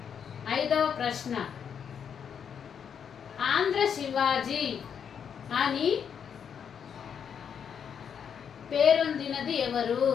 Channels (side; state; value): right; quieter; 7.6 dB